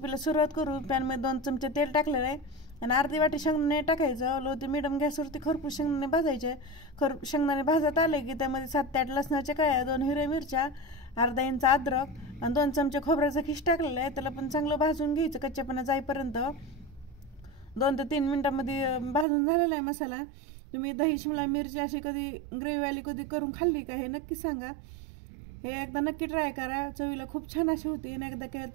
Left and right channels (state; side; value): drops out; left; at 19.2 s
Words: सुरुवात करू. पॅनमध्ये 2 चमचे तेल टाकलेलं आहे आणि अर्धी वाटी शेंगदाणे टाकायचं. लो ते मीडियम गॅसवरती खरपूस शेंगदाणे भाजायचे. शेंगदाणे भाजत आले की त्यामध्ये 7 ते 8 लसणाच्या कळ्या, 2 हिरव्या मिरच्या, अर्धा इंच अद्रक आणि 2 चमचे खोबऱ्याचा खिस टाकलेला आहे. त्याला पण चांगलं भाजून घ्यायचं कच्चेपणा जाईपर्यंत. 2 ते 3 मिनिटांमध्ये भाजून झालेला आहे मसाला. तुम्ही दही शिमला मिरची अशी कधी ग्रेव्हीवाली कधी करून खाल्ली का हे नक्की सांगा. हे एकदा नक्की ट्राय करा. चवीला खूप छान अशी होती आणि एकदा केलं